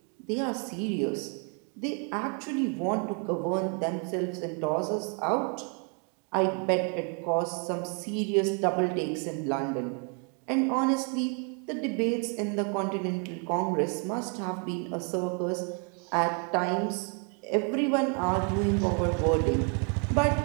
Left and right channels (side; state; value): left; quieter; 38.7 dB